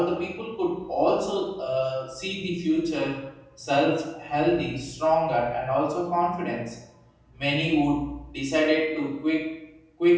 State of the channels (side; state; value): both; identical; correlation 1.00